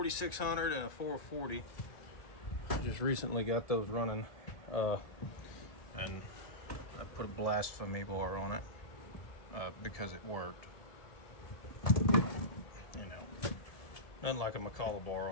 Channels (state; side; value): late; right; 1.7 ms